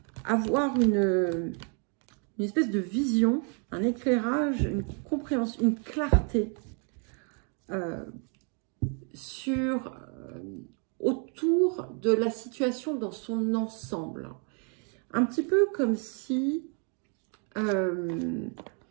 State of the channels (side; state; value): left; quieter; 39.6 dB